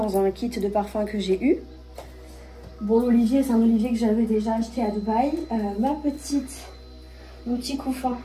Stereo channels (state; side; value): identical; both; correlation 1.00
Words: un kit de parfum que j'ai eu. Bon, l'olivier, c'est un olivier que j'avais déjà acheté à Dubaï. Ma petite Mon petit couffin,